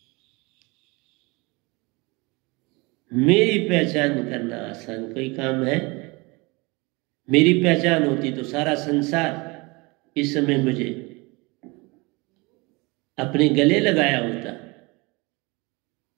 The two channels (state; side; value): quieter; left; 26.1 dB